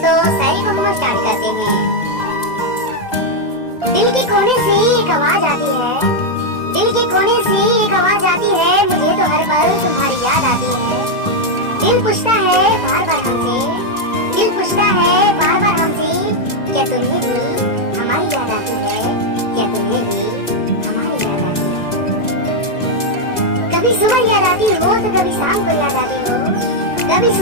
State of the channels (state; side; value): late; right; 2.0 ms